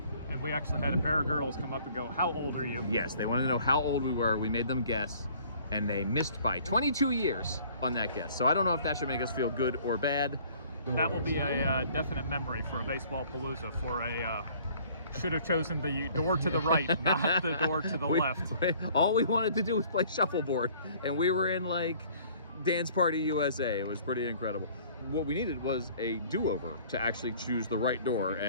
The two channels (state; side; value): inverted; both; correlation -0.55